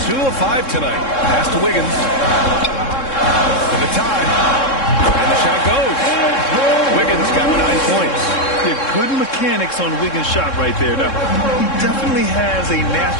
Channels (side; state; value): right; late; 3.7 ms